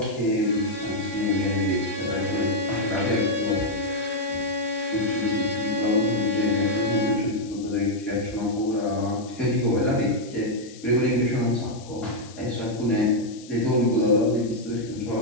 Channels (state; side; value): noise; left; hiss, 20 dB below the sound